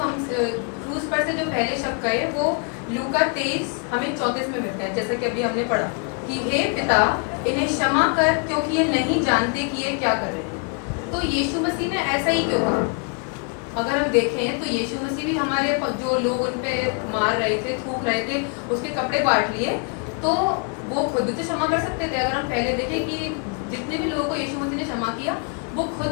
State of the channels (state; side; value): quieter; right; 37.8 dB